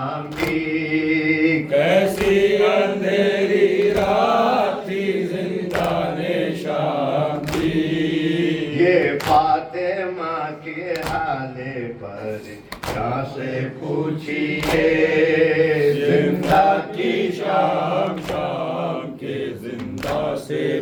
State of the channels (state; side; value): identical; both; correlation 1.00